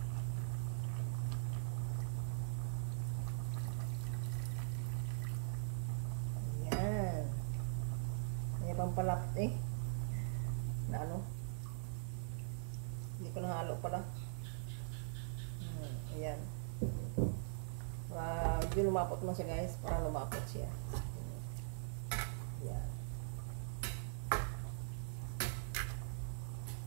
Ayan. Ayan pampalapot na hindi ko nahalo pala. lumapot naman siya guys. Para lumapot siya. Yan.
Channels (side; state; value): left; silent; digital silence